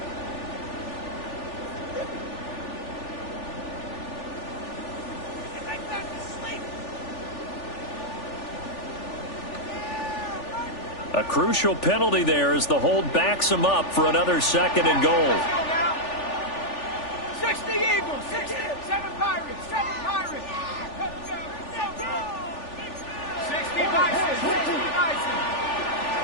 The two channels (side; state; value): right; late; 3.4 ms